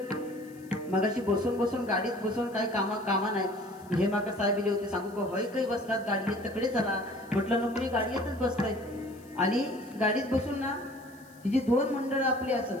मगाशी बसून गाडीत बसून काही कामा नाही. हे माका साहेब दिले होते, सांगू का होय काही बसतात गाडी येत तकडे चला म्हटलं नको, मी गाडी येतच बसतोय. आणि गाडीत बसून ना ही जी 2 मंडळ आपली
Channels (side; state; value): left; noise; hiss, 26 dB below the sound